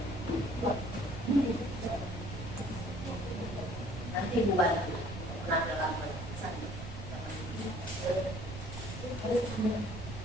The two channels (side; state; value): right; noise; rumble, 8 dB below the sound